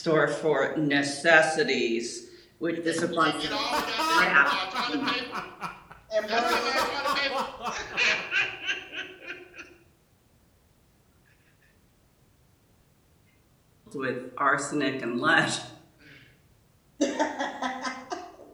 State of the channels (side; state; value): both; identical; correlation 1.00